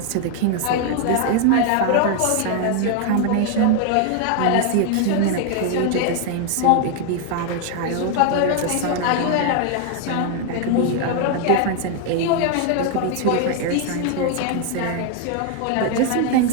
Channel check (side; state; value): both; different; correlation 0.00